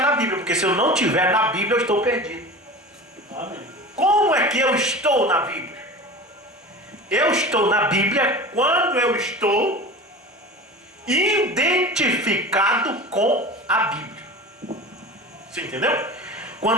Bíblia, porque se eu não estiver na Bíblia eu estou perdido. Amém. Como é que eu estou na Bíblia? Eu estou na Bíblia quando eu estou identificado com a Bíblia. Você entendeu?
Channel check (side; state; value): both; normal; correlation 0.34